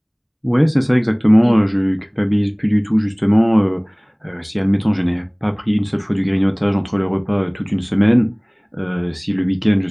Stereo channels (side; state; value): both; identical; correlation 1.00